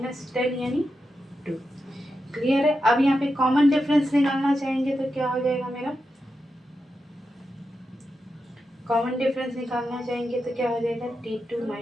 10 यानी 2। क्लियर है। अब यहाँ पे कॉमन डिफरेंस निकालना चाहेंगे तो क्या हो जाएगा मेरा, कॉमन डिफरेंस निकालना चाहेंगे तो क्या हो जाएगा, T2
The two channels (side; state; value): both; normal; correlation 0.88